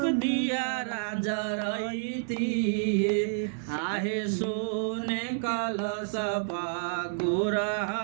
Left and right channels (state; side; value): silent; left; 58 dB below the other